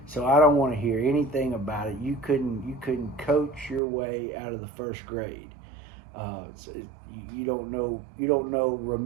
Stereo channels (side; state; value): left; drops out; at 3.8 s